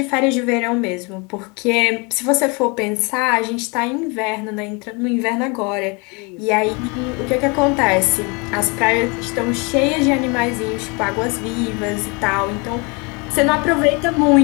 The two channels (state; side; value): quieter; right; 30.1 dB